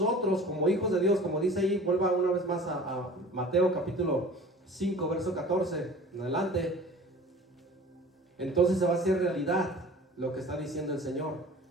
como hijos de Dios, como dice ahí, vuelva una vez más a Mateo capítulo 5, verso 14 en adelante, entonces se va a hacer realidad lo que está diciendo el Señor.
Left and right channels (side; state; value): both; normal; correlation 0.43